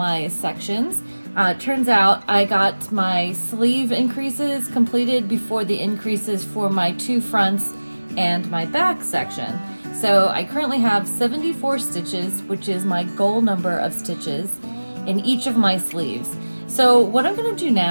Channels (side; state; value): both; inverted; correlation -1.00